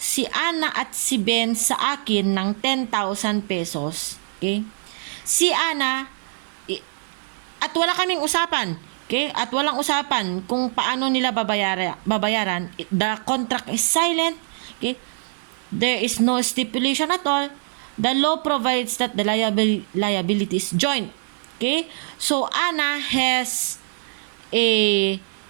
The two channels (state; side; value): silent; left; 60 dB below the other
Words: Ana at si Ben sa akin ng 10,000 pesos, okay? Si Ana, at wala kaming usapan, okay? At walang usapan kung paano nila babayaran. The contract is silent, okay? There is no stipulation at all. The law provides that the liability is joint, okay? So Ana has an